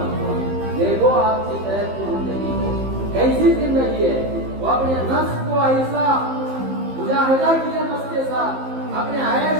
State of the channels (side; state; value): left; late; 15 ms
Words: ہوا۔ دیکھو آپ کی صحت کی زندگی کو کیسی زندگی ہے، وہ اپنے نفس کو ایسا مجاہدہ کیا نفس کے ساتھ، اپنے